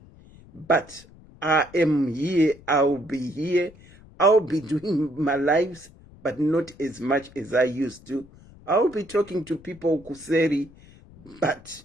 But I am here, I'll be here, I'll be doing my lives, but not as much as I used to. I'll be talking to people kuseri, but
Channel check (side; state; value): left; noise; rumble, 23 dB below the sound